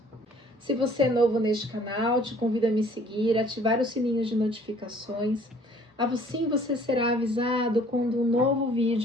Se você é novo neste canal, te convido a me seguir, ativar o sininho de notificações. Assim você será avisado quando um novo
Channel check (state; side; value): normal; both; correlation 0.56